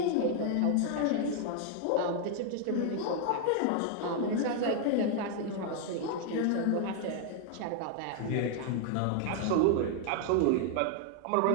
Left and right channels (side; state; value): both; different; correlation 0.00